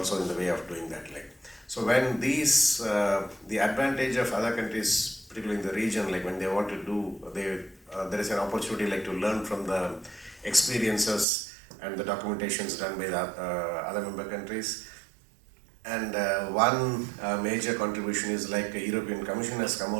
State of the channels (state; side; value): drops out; left; at 11.2 s